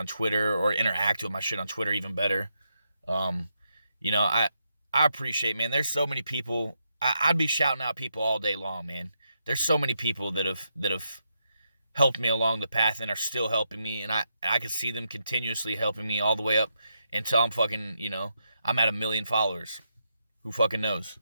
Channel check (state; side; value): inverted; both; correlation -0.82